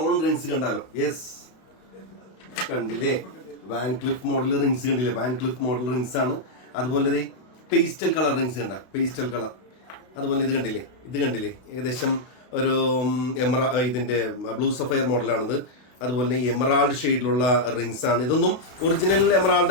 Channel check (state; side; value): late; right; 32 ms